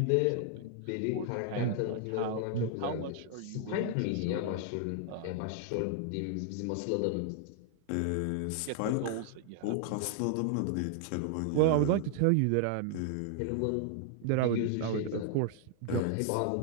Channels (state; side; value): different; both; correlation 0.00